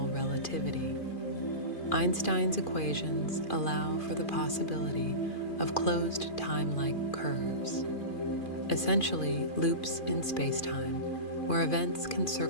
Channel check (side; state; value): right; late; 2.4 ms